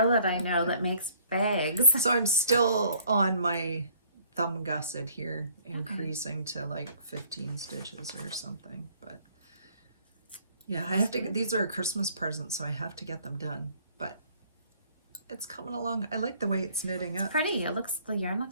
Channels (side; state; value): both; inverted; correlation -0.58